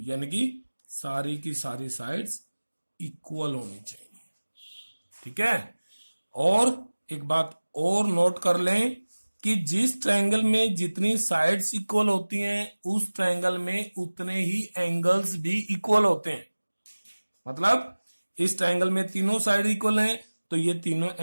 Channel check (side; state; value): both; inverted; correlation -1.00